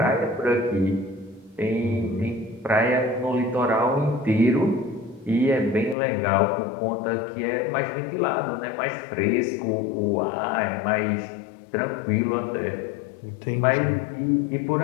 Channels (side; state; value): right; drops out; at 6.0 s